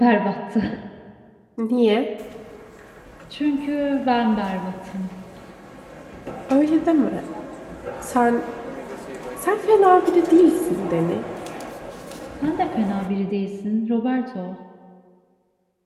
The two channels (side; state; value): both; identical; correlation 1.00